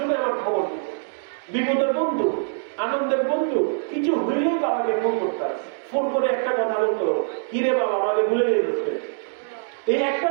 আমার খবর দিত, বিপদের বন্ধু, আনন্দের বন্ধু, কিছু হইলেই বাবাকে ফোন করতাম, ফোন করে একটা কথা বলতো, কিরে বাবা আমাকে ভুলে গেছে। এই একটা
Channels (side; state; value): left; silent; digital silence